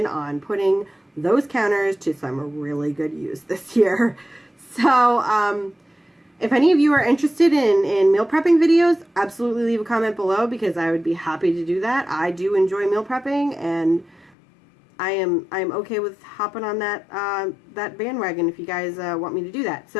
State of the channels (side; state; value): right; drops out; at 14.3 s